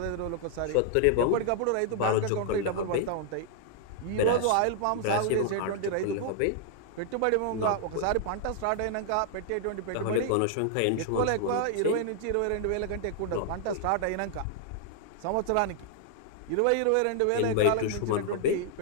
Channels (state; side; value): different; both; correlation 0.00